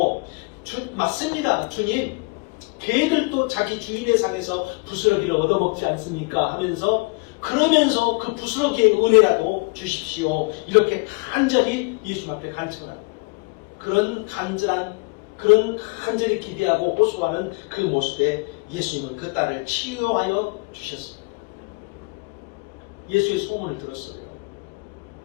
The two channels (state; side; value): quieter; right; 29.3 dB